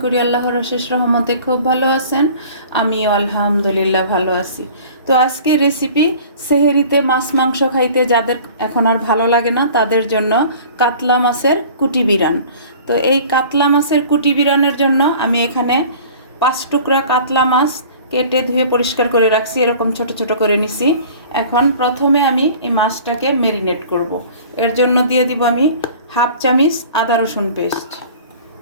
করি আল্লাহর অশেষ রহমতে খুব ভালো আছেন। আমিও আলহামদুলিল্লাহ ভালো আছি। তো আজকে রেসিপি সেহেরিতে মাছ মাংস খাইতে যাদের এখন আর ভালো লাগে না তাদের জন্য কাতলা মাছের কুটি বিরান। তো এই কাতলা মাছের কুটি বিরানের জন্য আমি এখানে 5 টুকরা কাতলা মাছ কেটে ধুয়ে পরিষ্কার করে রাখছি, এরকম ছোট ছোট করে নিছি। এখন প্রথমে আমি এই মাছটাকে ম্যারিনেট করব। এর জন্য দিয়ে দিব আমি হাফ চামচ আদা রসুন পেস্ট,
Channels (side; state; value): both; inverted; correlation -0.45